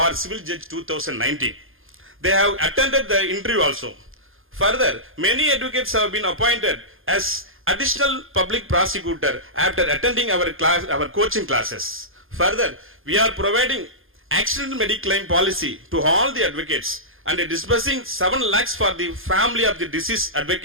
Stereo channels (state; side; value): late; left; 0.60 ms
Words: Civil Judge 2019. They have attended the interview also. Further, many advocates have been appointed as additional public prosecutor after attending our coaching classes. Further, we are providing accidental medical claim policy to all the advocates and disbursing 7 lakhs for the family of the deceased